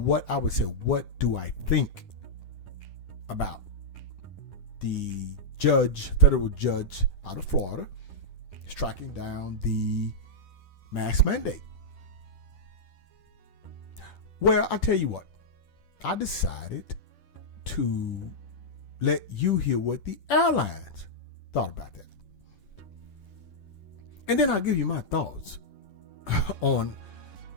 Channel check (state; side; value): late; right; 10 ms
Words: I would say, what do I think about the federal judge out of Florida striking down the mask mandate. Well, I tell you what, I decided to let you hear what the airlines thought about that. And then I'll give you my thoughts on